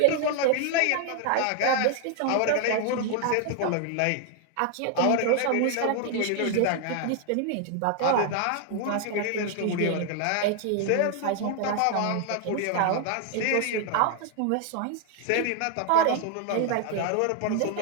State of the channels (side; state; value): both; different; correlation 0.00